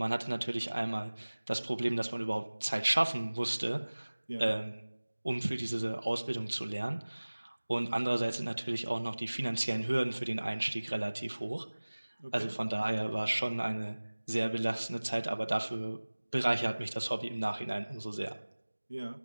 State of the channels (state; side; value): inverted; both; correlation -1.00